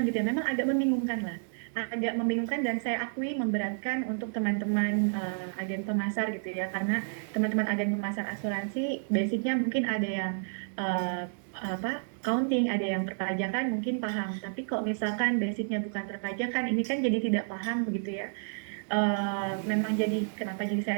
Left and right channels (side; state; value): left; silent; digital silence